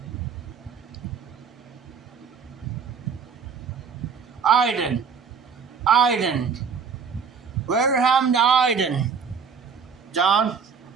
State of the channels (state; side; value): quieter; left; 6.1 dB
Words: Iden. Where happened to Iden? John?